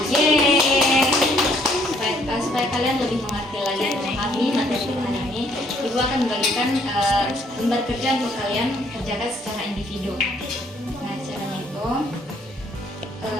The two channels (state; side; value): normal; both; correlation 0.65